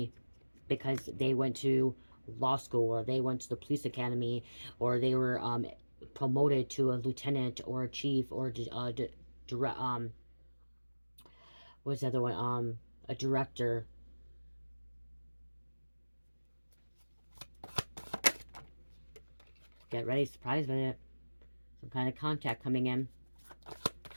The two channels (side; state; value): both; inverted; correlation -1.00